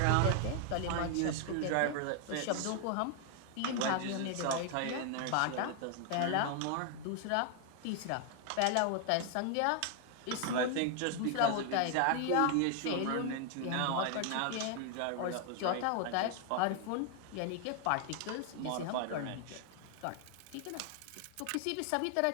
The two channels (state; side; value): different; both; correlation 0.00